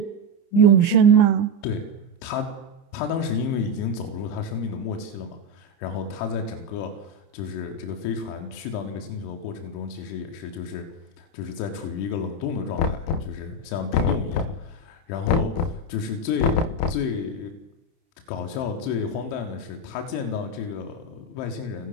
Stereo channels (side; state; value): right; late; 30 ms